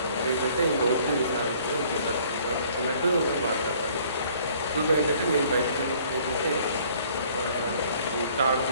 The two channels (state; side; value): inverted; both; correlation -0.57